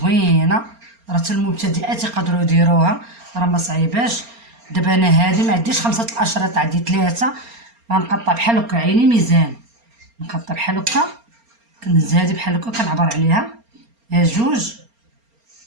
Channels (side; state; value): left; late; 4.3 ms